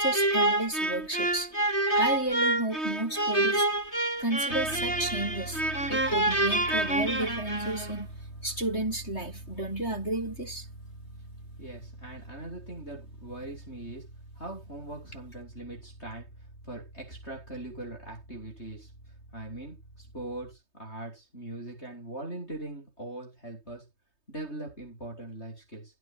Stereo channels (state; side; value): late; right; 3.2 ms